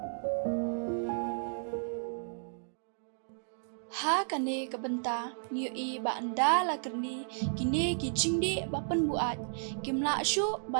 ha kane kabenta ngiu i ba anda la kerni kine ki jingdi ba Pynbuaid kimla shu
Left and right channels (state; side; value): silent; left; digital silence